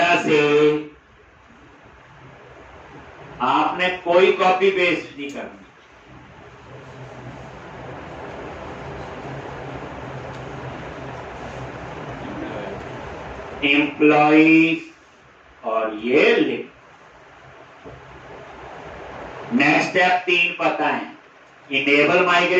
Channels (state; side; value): identical; both; correlation 1.00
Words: से आपने कोई कॉपी पेस्ट नहीं करनी, एम्प्लॉइज, और ये लिख। नेक्स्ट स्टेप 3 पता है, इनेबल